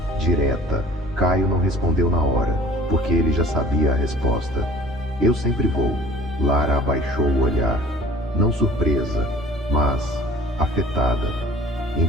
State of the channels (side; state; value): both; normal; correlation 0.47